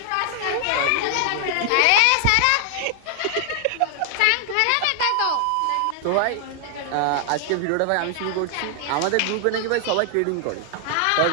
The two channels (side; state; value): both; different; correlation 0.00